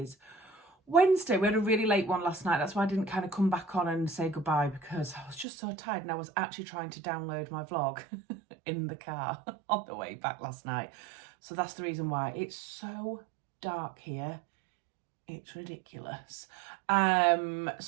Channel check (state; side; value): drops out; left; at 5.5 s